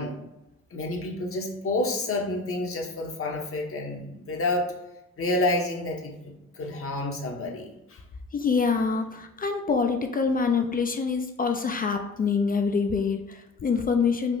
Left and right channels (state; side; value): quieter; right; 3.7 dB